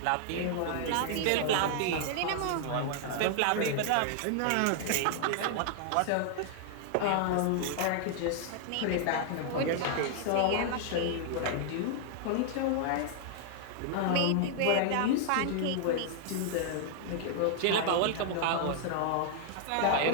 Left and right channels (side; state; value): both; different; correlation 0.00